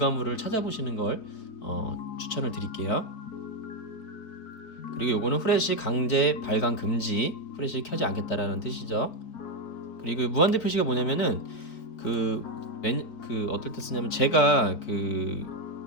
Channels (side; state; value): right; late; 4.4 ms